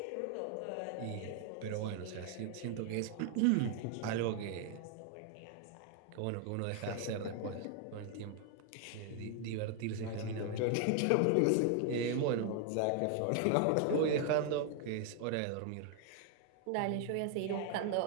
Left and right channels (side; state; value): both; different; correlation 0.00